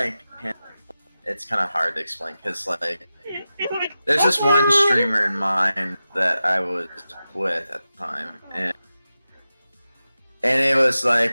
it's kind of hard to explain because like there's just one streamer in mind that I was with at the time, and And it was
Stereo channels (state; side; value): inverted; both; correlation -0.93